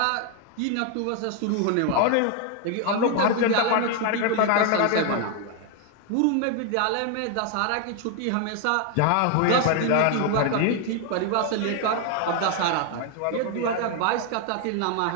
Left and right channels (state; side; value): different; both; correlation 0.00